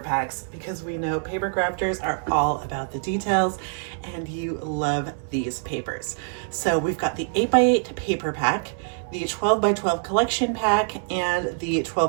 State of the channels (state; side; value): silent; left; 62 dB below the other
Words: packs, because we know paper crafters are all about the details and you love these papers. So we've got the 8x8 paper pack, the 12x12 collection pack, and the